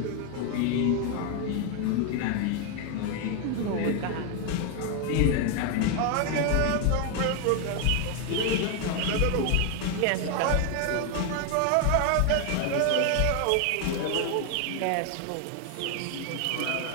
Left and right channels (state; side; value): different; both; correlation 0.01